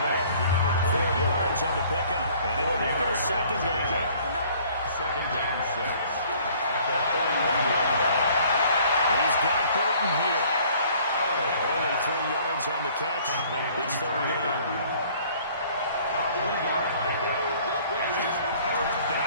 yards on the pickup, and it'll make it a 2nd down. 2nd and 6. At the 41. He's got Burton here. Only 3 yards on the catch. It's 3rd down.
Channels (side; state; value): both; inverted; correlation -0.55